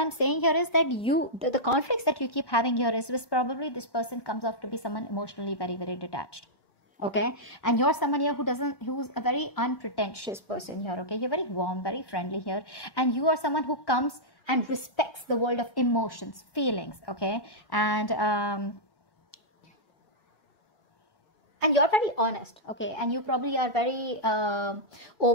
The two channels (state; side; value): late; right; 1.1 ms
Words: saying here is that the conflicts that you keep having here is probably this person comes off to be someone emotionally very, very detached, okay? And you're someone here who's a very unpretentious person here, okay? You're very warm, very friendly here. And you are someone who comes and respects the world of emotions, feelings, okay? And you're very honest, okay? And you probably are very